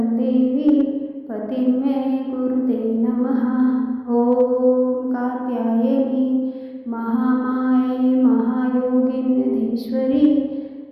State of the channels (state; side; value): identical; both; correlation 1.00